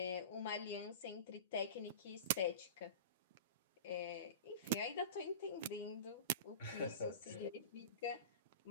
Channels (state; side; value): inverted; both; correlation -0.32